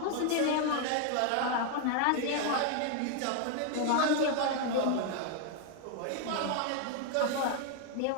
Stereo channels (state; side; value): different; both; correlation 0.00